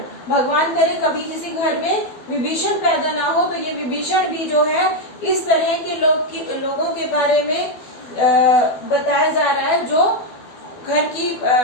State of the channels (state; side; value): late; right; 12 ms